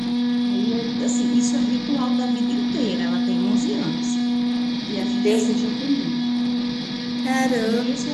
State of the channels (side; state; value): both; identical; correlation 1.00